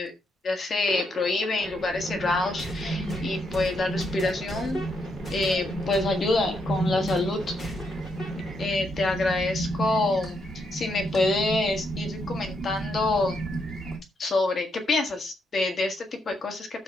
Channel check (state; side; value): normal; both; correlation 0.78